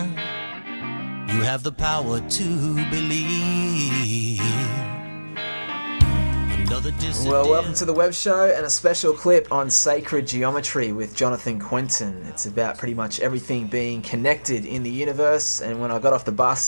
You have the power to believe. Well, welcome to the Web Show and a special clip on sacred geometry with Jonanthan Quintin. It's about pretty much everything being connected in the universe, and when I got off the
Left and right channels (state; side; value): inverted; both; correlation -1.00